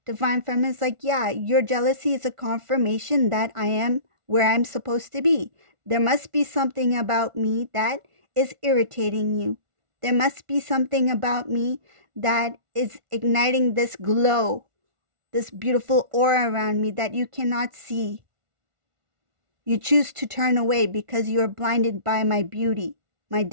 is like, yeah, your jealousy is a confirmation that I am where I'm supposed to be. There must be something about me that is irritating you. There must be something about me that is igniting this glow, this beautiful aura around me that you cannot see. You choose to turn away because you are blinded by my beauty, my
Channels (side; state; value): left; late; 1.4 ms